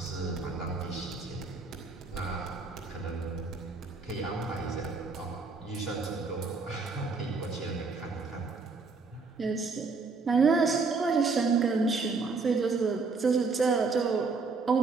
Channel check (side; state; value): left; quieter; 4.3 dB